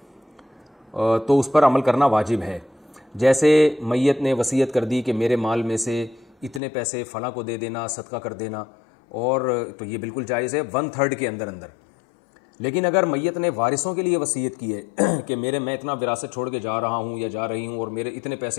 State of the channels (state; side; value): drops out; right; at 6.6 s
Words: تو اس پر عمل کرنا واجب ہے. جیسے میت نے وصیت کر دی کہ میرے مال میں سے اتنے پیسے فلاں کو دے دینا، صدقہ کر دینا، اور تو یہ بالکل جائز ہے 1/3 کے اندر. لیکن اگر میت نے وارثوں کے لیے وصیت کی ہے کہ میں اتنا وراثت چھوڑ کے جا رہا ہوں یا جا رہی ہوں اور میرے اتنے